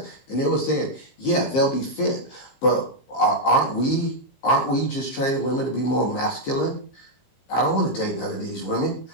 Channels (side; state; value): right; late; 15 ms